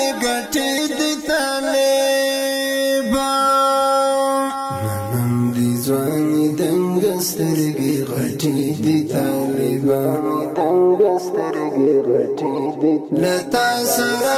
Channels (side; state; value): both; identical; correlation 1.00